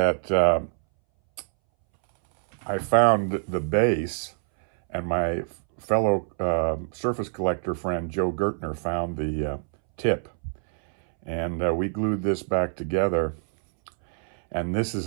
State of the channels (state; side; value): silent; left; 61 dB below the other